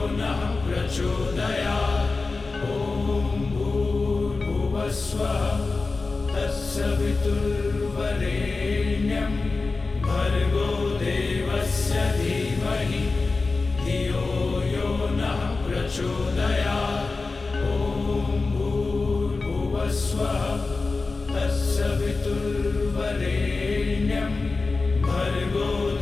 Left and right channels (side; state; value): right; quieter; 3.8 dB